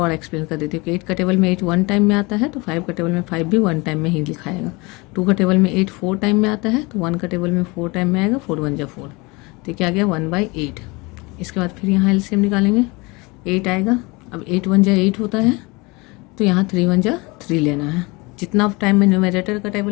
एक्सप्लेन कर देती हूँ कि 8 का टेबल में 8 1 टाइम में आता है तो 5 का टेबल में 5 भी 1 टाइम में ही लिखाएगा। 2 का टेबल में 8 4 टाइम में आता है तो 1 का टेबल में 4 टाइम में आएगा, 4 1 जा 4, तो क्या आ गया 1/8। इसके बाद फिर यहाँ एलसीएम निकालेंगे, 8 आएगा। अब 8 1 जा 8 होता है तो यहाँ 3 1 जा 3 लेना है। जितना टाइम में न्यूमरेटर का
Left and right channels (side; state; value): right; quieter; 25.7 dB